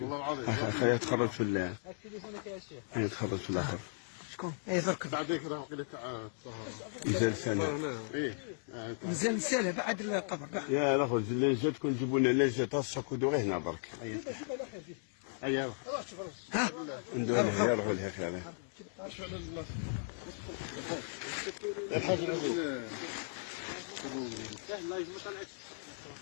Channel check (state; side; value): silent; right; 54 dB below the other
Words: اخي يتخرج في الاخر. شكون؟ اي ذاك بعديك راه قيل تاع مازال سنه. مازال سنه بعد الطبع. يا الاخو زاد تكون جيبوا لنا نجات الساكو دو غير هنا برك. ايوا ها ندير لها يروحوا لها خير.